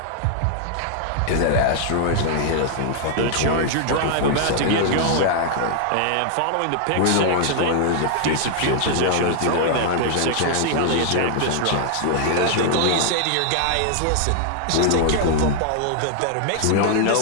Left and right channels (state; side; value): different; both; correlation 0.00